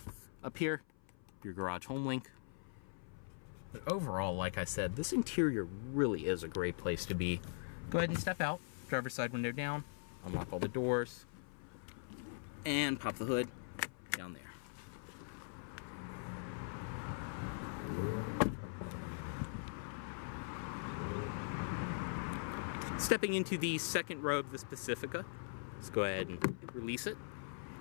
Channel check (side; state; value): right; silent; 50 dB below the other